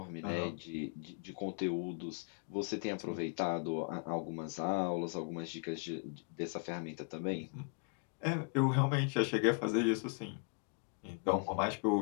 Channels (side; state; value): right; quieter; 36.8 dB